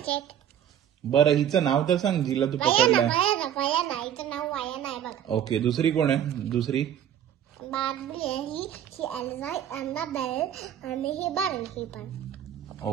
आहेत. बरं हिचं नाव तर सांग, जिला तू पकडलंय. वयाना हिचं नाव वयाना आहे बघ. ओके, दुसरी कोण आहे? दुसरी बार्बी आहे ही एल्सा, अन्नाबेल आणि ही बार्बी पण.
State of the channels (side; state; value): left; quieter; 10.1 dB